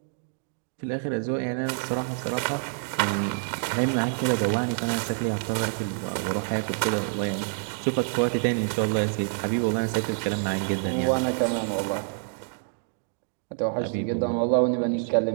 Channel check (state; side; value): silent; left; digital silence